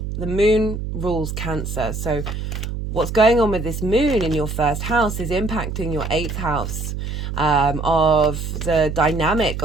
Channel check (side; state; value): right; noise; hum, 5 dB below the sound